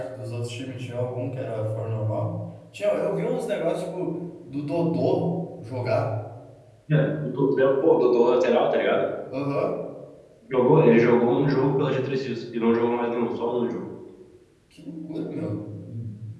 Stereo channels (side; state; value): both; identical; correlation 1.00